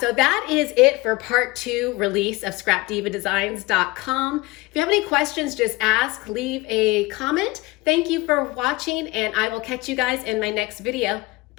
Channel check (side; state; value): right; quieter; 22.4 dB